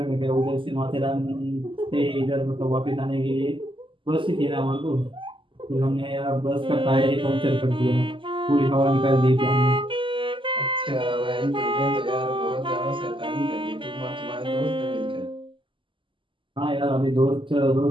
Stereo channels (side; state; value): left; late; 0.25 ms